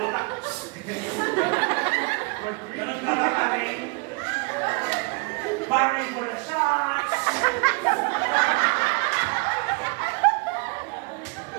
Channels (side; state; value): left; quieter; 31.0 dB